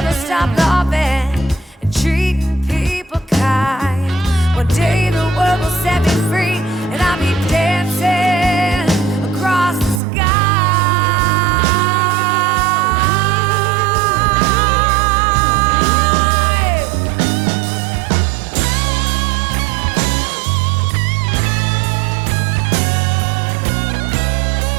stop loving and treating people kind. One day the world will set me free, and I'll be dancing across the sky.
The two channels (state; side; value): drops out; left; at 10.0 s